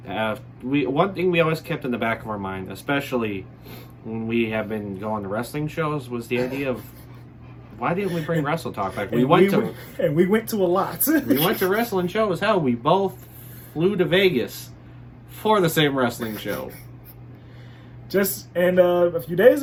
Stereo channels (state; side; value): identical; both; correlation 1.00